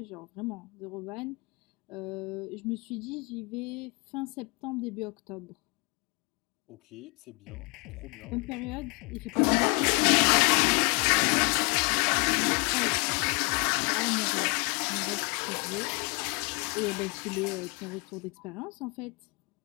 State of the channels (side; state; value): right; quieter; 31.1 dB